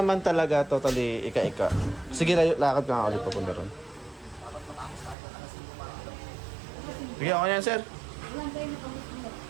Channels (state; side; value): drops out; left; at 5.2 s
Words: talaga totally ika-ika. Sige, lakad ka nga ulit papunta ron. Sige, ako yan, sir.